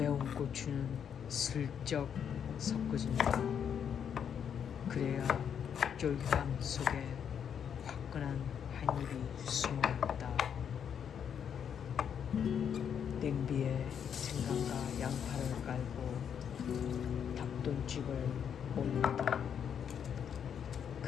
고추는 슬쩍 섞어준다. 그래야 쫄깃함 속에 화끈한 한 입이 숨어있다. 냄비에 생강과 양파를 깔고 닭똥집을 올린다.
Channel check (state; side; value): quieter; right; 8.1 dB